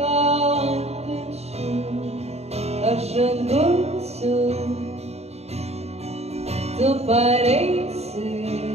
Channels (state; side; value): late; left; 0.31 ms